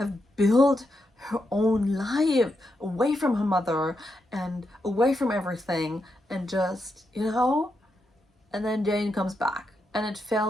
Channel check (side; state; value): both; normal; correlation 0.84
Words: built her own life away from her mother and away from everything, and just, and then Jane comes back, and I